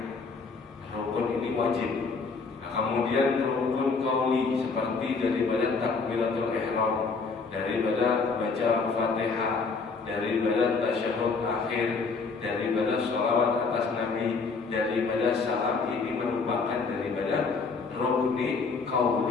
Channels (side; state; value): right; quieter; 4.6 dB